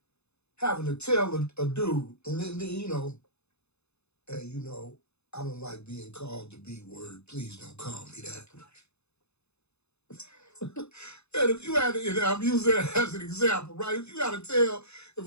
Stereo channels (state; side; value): late; right; 0.80 ms